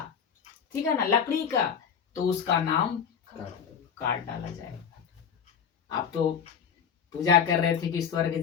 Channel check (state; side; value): quieter; right; 7.3 dB